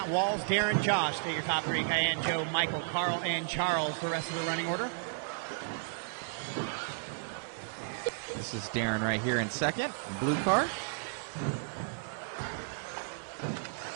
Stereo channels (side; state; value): left; silent; digital silence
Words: Walls, Darren, Josh. Stay your top three. Cayenne, Joe, Michael, Carl, and Charles. The rest of the running order. This is Darren right here in second. Blue car.